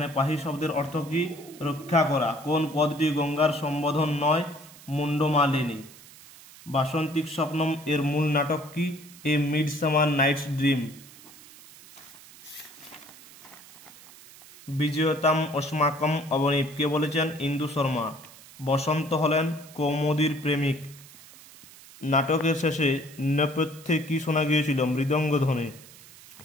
পাহি শব্দের অর্থ কি? রক্ষা করা। কোন পদটি গঙ্গার সম্বোধন নয়? মুন্ডমালিনী। বাসন্তিক স্বপ্নম এর মূল নাটক কি? এ মিডসামার নাইটস ড্রিম। বিজয়তাম অস্মাকম অবনীত কে বলেছেন? ইন্দু শর্মা। বসন্ত হলেন কৌমুদীর প্রেমিক। নাটকের শেষে নেপথ্যে কি শোনা গিয়েছিল? মৃদঙ্গ ধ্বনি।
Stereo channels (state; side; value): noise; right; hiss, 20 dB below the sound